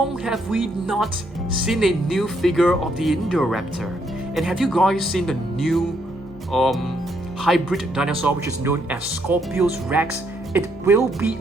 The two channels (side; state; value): both; normal; correlation 0.73